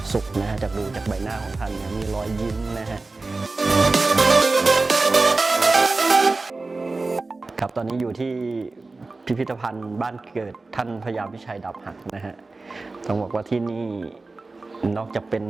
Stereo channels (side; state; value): left; quieter; 3.5 dB